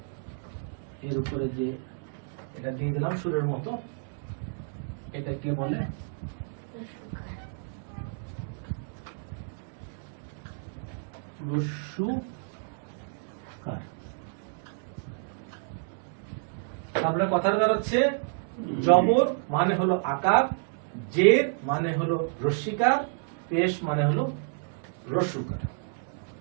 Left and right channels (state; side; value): silent; left; digital silence